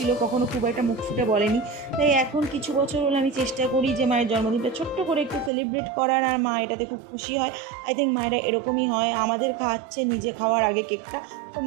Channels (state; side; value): drops out; left; at 5.5 s